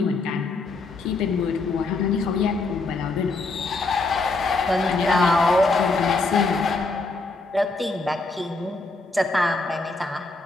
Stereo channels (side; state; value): right; quieter; 3.5 dB